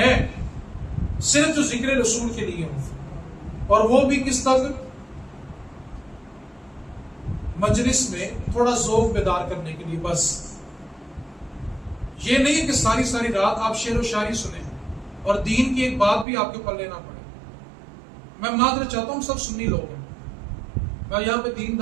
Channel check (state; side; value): drops out; left; at 16.2 s